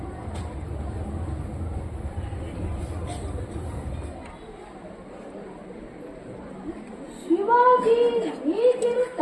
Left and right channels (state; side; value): identical; both; correlation 1.00